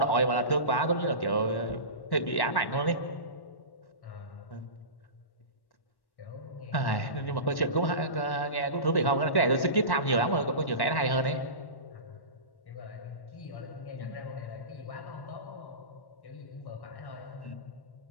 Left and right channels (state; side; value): late; right; 1.1 ms